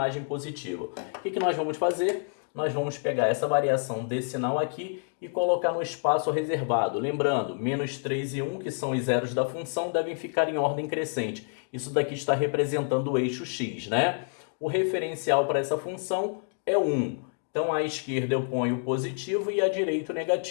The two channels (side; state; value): right; silent; 59 dB below the other